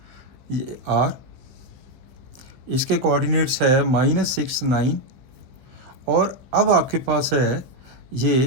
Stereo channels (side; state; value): left; late; 16 ms